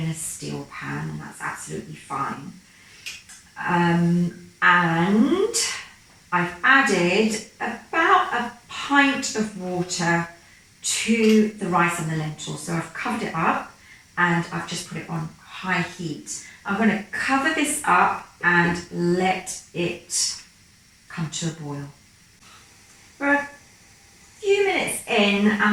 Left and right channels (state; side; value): identical; both; correlation 1.00